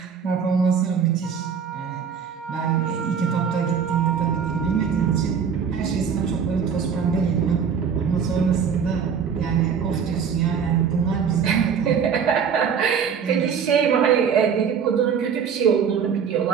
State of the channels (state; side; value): quieter; left; 6.9 dB